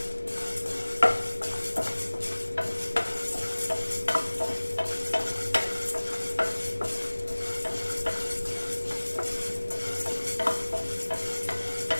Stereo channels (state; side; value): inverted; both; correlation -1.00